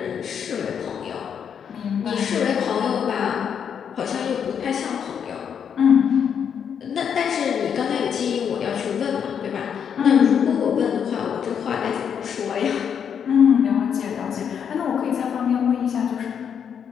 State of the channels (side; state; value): right; quieter; 7.8 dB